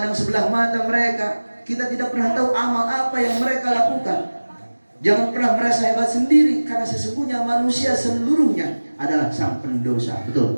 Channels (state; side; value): inverted; both; correlation -1.00